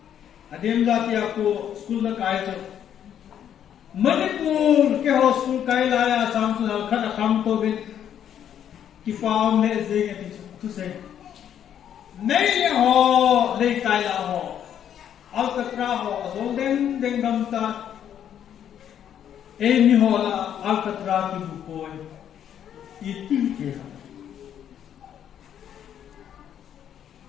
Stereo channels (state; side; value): quieter; right; 9.6 dB